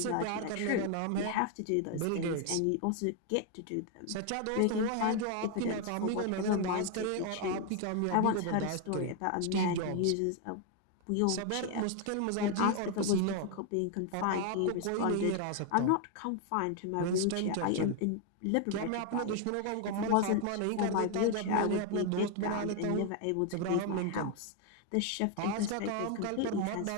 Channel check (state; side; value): different; both; correlation 0.00